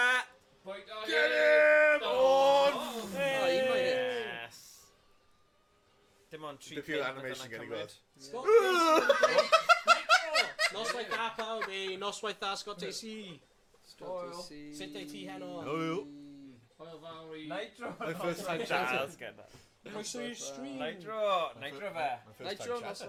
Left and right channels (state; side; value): identical; both; correlation 1.00